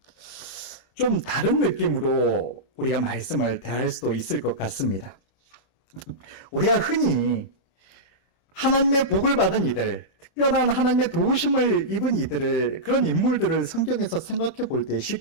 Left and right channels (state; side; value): late; right; 32 ms